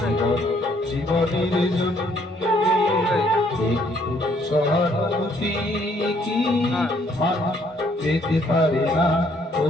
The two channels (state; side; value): normal; both; correlation 0.66